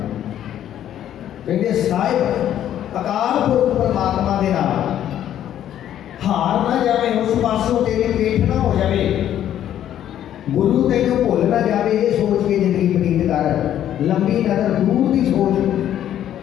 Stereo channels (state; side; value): quieter; right; 11.1 dB